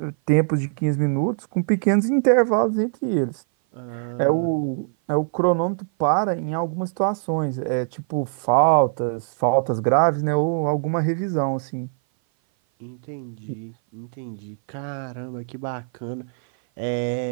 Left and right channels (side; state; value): left; silent; 57 dB below the other